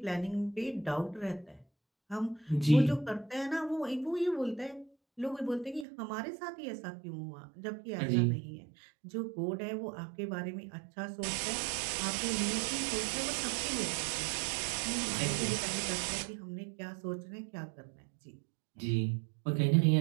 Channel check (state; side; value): drops out; left; at 5.9 s